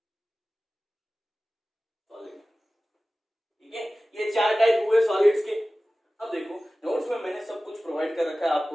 solid. ठीक है, ये 4 टाइप हुए सॉलिड्स के। अब देखो नोट्स में मैंने सब कुछ प्रोवाइड कर रखा है,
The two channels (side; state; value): both; normal; correlation 0.96